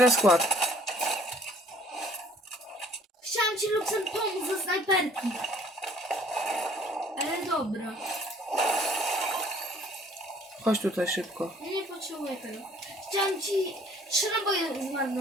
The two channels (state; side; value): normal; both; correlation 0.57